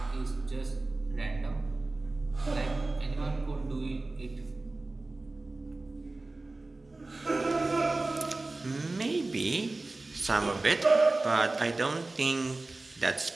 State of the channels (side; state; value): left; quieter; 3.1 dB